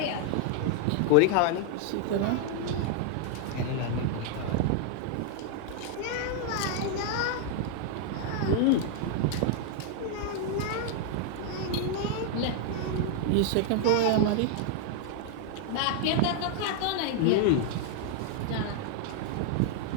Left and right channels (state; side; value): different; both; correlation 0.00